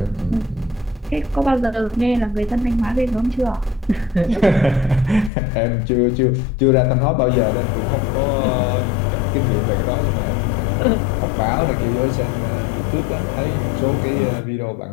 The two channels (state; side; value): drops out; right; at 5.3 s